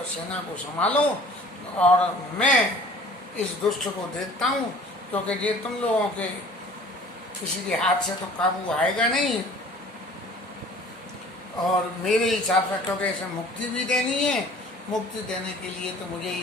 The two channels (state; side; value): normal; both; correlation 0.48